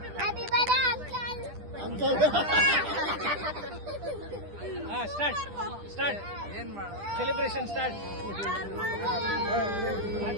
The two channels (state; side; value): late; left; 10 ms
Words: Start celebration start.